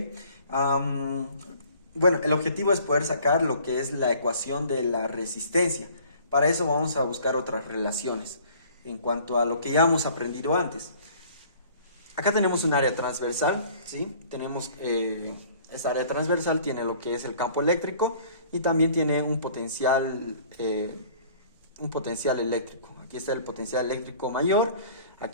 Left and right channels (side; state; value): both; inverted; correlation -0.52